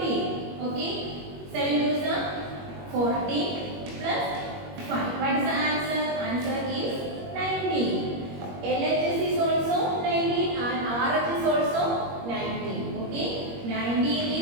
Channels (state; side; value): late; left; 21 ms